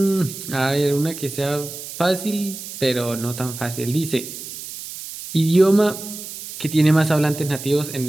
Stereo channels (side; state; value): right; noise; hiss, 11 dB below the sound